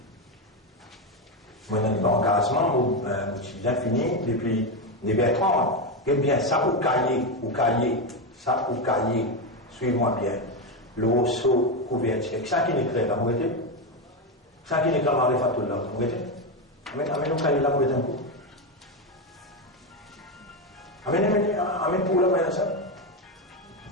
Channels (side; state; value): both; normal; correlation 0.10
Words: Moi, dans l'engagement, j'ai bien fini depuis les Bertrand. Eh bien, ça au cahier. Ça, au cahier, suivez-moi bien. Le osso couverture. Ça qui n'est clair, là, vous voyez? Ça qui n'est clair, Ma'rifatullah, vous voyez? Amène au cahier, là, vous voyez un coup. Amène pour là, vous ça.